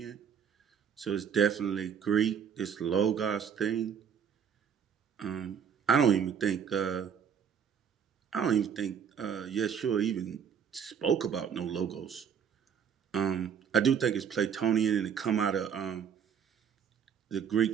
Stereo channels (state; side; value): quieter; left; 7.6 dB